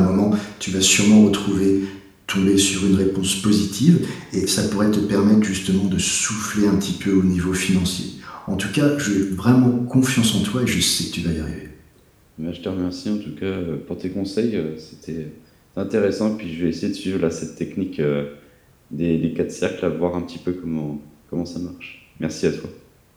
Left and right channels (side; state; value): both; identical; correlation 1.00